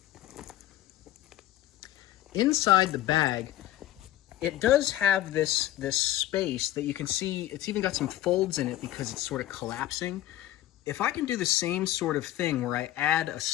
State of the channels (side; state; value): right; quieter; 14.1 dB